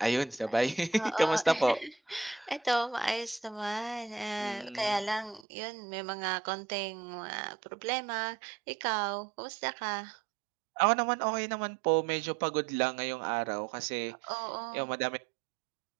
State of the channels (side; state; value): left; drops out; at 5.5 s